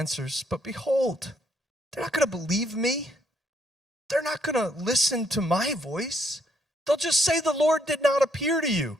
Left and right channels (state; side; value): normal; both; correlation 0.71